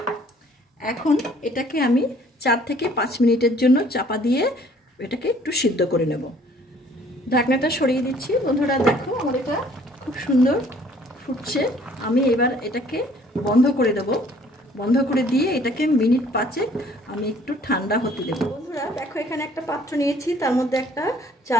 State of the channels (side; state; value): both; normal; correlation 0.57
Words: এখন এটাকে আমি 4 থেকে 5 মিনিটের জন্য চাপা দিয়ে এটাকে একটু সিদ্ধ করে নেব। ঢাকনাটা সরিয়ে দিচ্ছি বন্ধুরা। দেখো, আমার এটা খুব সুন্দর ফুটছে। আমি এবার এটাকে বন্ধ করে দেব। বন্ধ করে দিয়ে এটাকে মিনিট 5 আমি একটু ঠান্ডা হতে দেব। বন্ধুরা দেখো, এখানে একটা পাত্র নিয়েছি, তার মধ্যে একটা